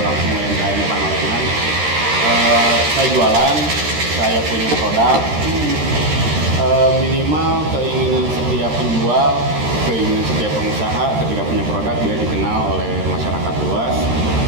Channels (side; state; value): left; late; 13 ms